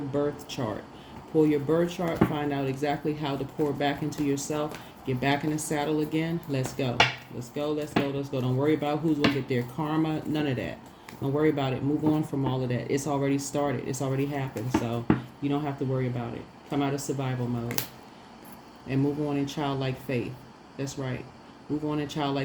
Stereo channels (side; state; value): both; identical; correlation 1.00